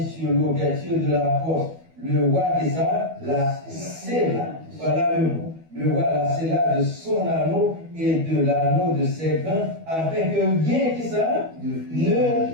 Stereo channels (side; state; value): left; late; 12 ms